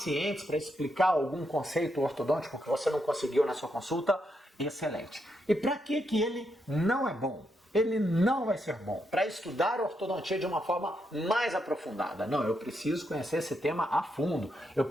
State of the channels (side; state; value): both; normal; correlation 0.81